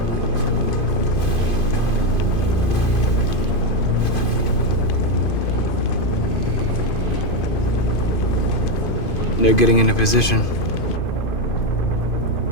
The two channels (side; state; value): right; late; 2.5 ms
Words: They're getting into position.